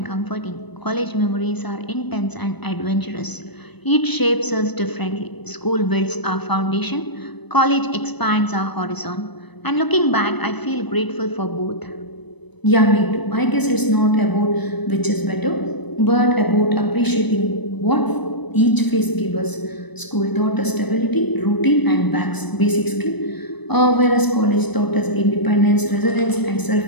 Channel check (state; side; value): late; right; 0.99 ms